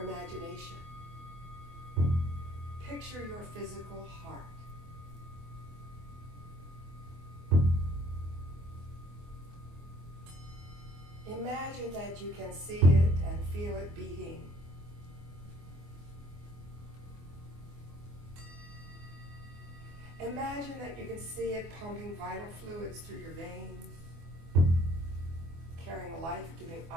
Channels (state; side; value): late; left; 24 ms